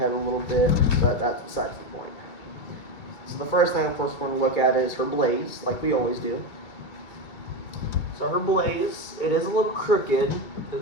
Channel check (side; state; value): right; late; 2.3 ms